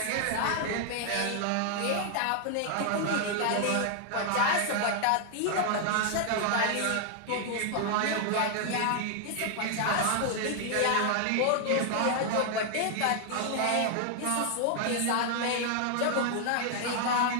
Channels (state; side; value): different; both; correlation 0.00